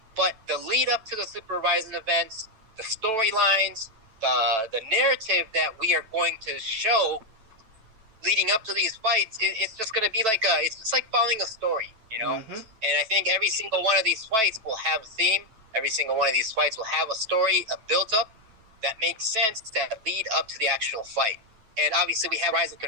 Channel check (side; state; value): left; late; 9.1 ms